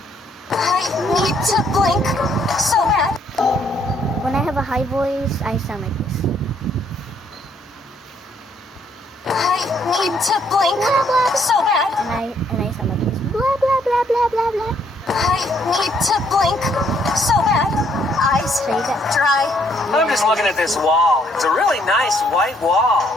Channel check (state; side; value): normal; both; correlation 0.68